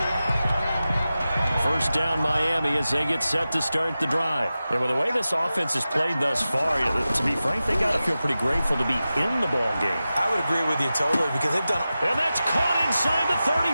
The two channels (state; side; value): inverted; both; correlation -0.94